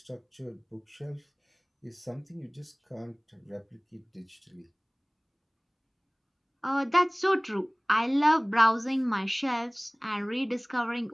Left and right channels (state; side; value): identical; both; correlation 1.00